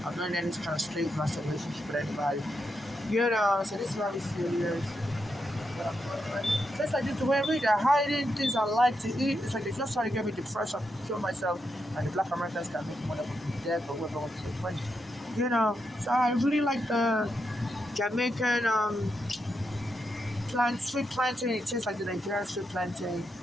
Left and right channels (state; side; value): normal; both; correlation 0.84